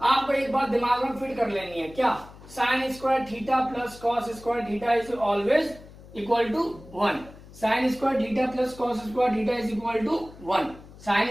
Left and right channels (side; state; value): left; noise; hum, 19 dB below the sound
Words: आपको एक बात दिमाग में फिट कर लेनी है, क्या, sin square theta plus cos square theta is always equal to 1। sin square theta plus cos square theta is equal to 1।